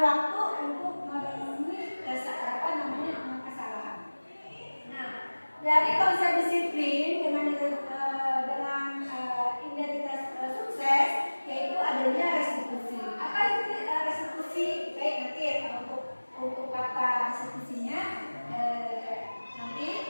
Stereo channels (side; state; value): both; inverted; correlation -1.00